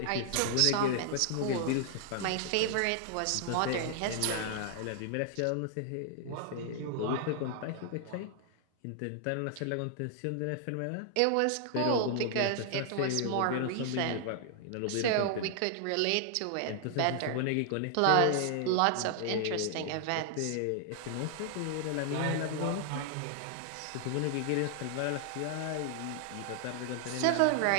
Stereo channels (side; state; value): both; different; correlation 0.00